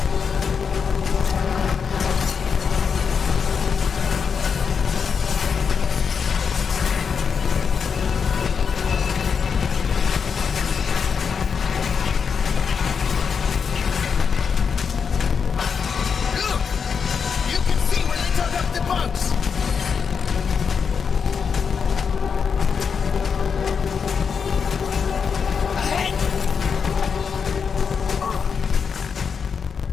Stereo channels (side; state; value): right; quieter; 6.2 dB